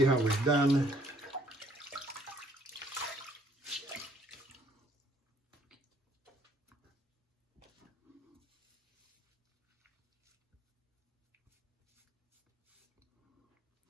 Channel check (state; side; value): normal; both; correlation 0.63